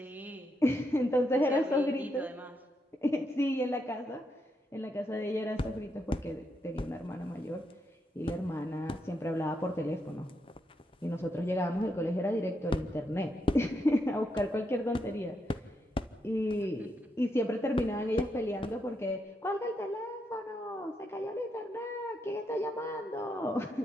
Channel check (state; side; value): normal; both; correlation 0.81